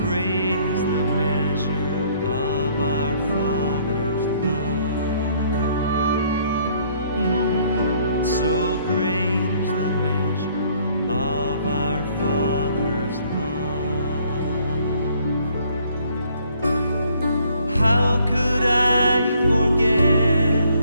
Great is the measure of our Father's love. So great is the measure of our Father's love. How could I forget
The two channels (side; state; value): both; inverted; correlation -0.63